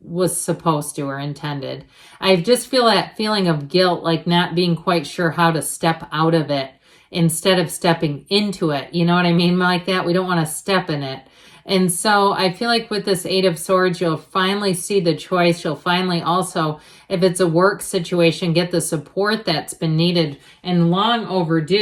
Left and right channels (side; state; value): both; identical; correlation 1.00